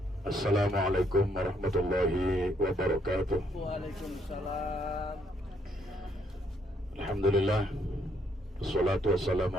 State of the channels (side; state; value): both; normal; correlation 0.71